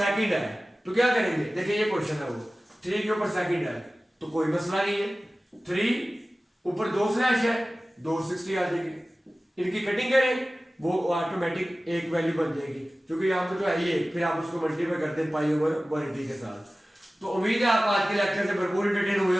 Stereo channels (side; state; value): both; normal; correlation 0.97